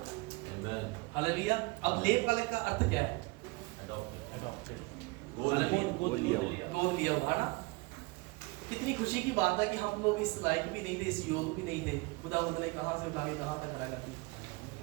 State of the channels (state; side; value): quieter; left; 25.2 dB